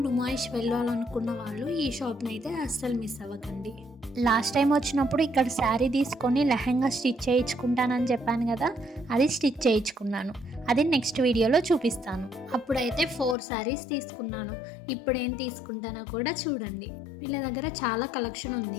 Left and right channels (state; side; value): drops out; right; at 13.4 s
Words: నుమాయిష్ వెళ్ళాలనుకున్న వాళ్ళు ఈ షాప్‌ని అయితే అస్సలు మిస్ అవ్వకండి. లాస్ట్ టైం వచ్చినప్పుడు ఇక్కడ శారీ తీసుకొని లెహంగా స్టిచ్ చేయించుకుంటానని చెప్పాను కదా, అది స్టిచ్ చేయించుకున్నాను. అది నెక్స్ట్ వీడియోలో చూపిస్తాను. అప్పుడైతే 4 శారీస్ తీసుకున్నాను. ఇప్పుడు ఏం తీసుకుంటానో కూడా చూడండి. వీళ్ళ దగ్గర చాలా కలెక్షన్